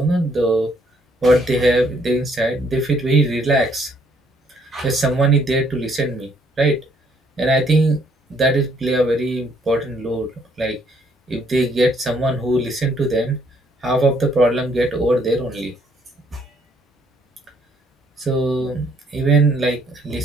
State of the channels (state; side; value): normal; both; correlation 0.67